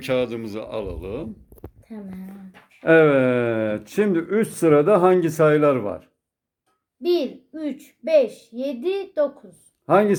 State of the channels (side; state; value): both; identical; correlation 1.00